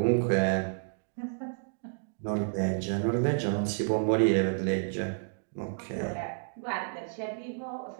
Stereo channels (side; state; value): left; silent; digital silence